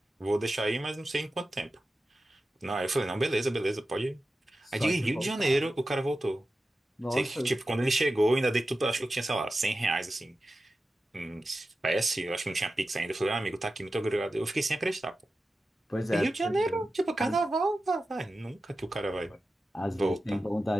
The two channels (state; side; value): normal; both; correlation 0.93